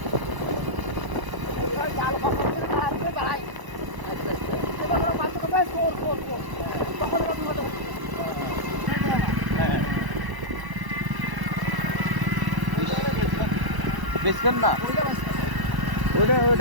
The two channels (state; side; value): late; left; 1.0 ms